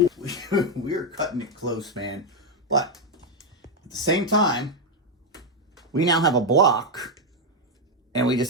we're cutting it close, man. But at the same time, we now have a block, and we just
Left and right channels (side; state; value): both; normal; correlation 0.03